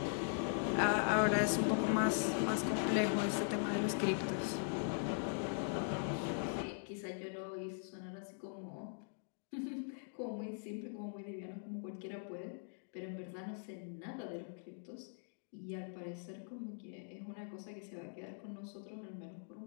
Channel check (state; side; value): silent; right; digital silence